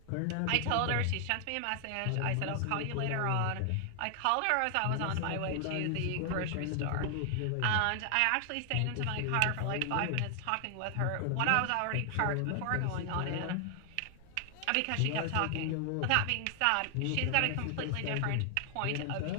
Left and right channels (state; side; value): different; both; correlation 0.00